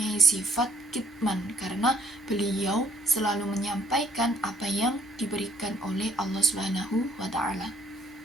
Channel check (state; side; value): normal; both; correlation 0.65